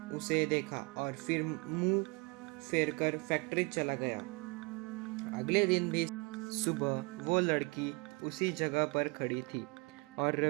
उसे देखा और फिर मुंह फेरकर फैक्ट्री चला गया। अगले दिन भी सुबह वो लड़की उसी जगह पर खड़ी थी और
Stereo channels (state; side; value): quieter; left; 29.1 dB